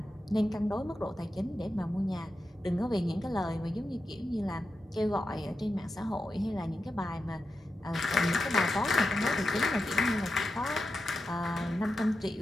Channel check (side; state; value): both; normal; correlation 0.89